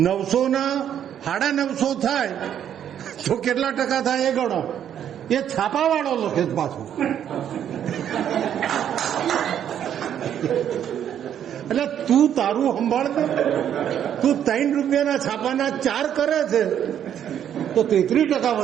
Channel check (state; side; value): quieter; left; 9.7 dB